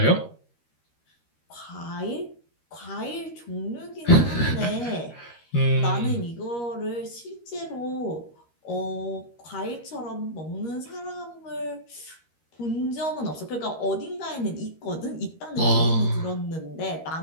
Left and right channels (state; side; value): late; right; 13 ms